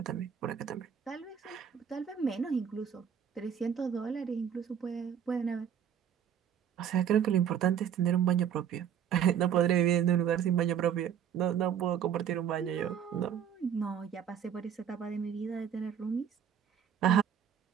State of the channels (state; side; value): quieter; left; 8.6 dB